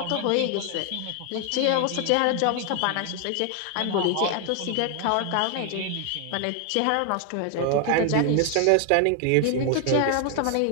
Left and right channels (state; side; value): different; both; correlation 0.00